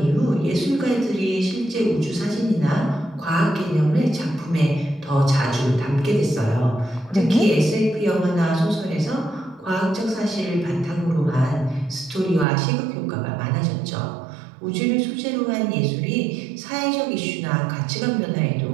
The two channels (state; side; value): drops out; left; at 12.5 s